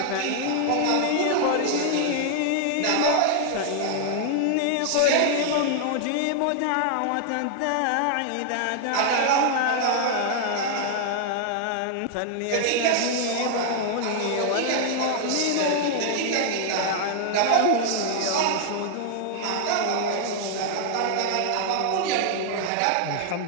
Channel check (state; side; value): different; both; correlation 0.00